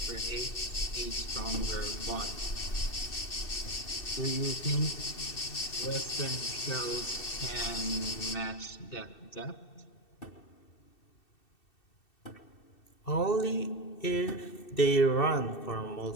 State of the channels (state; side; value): late; right; 2.7 ms